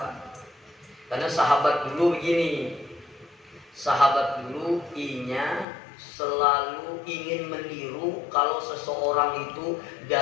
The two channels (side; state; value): right; drops out; at 5.7 s